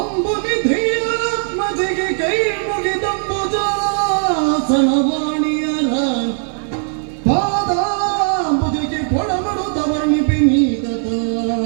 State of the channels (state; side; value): silent; left; digital silence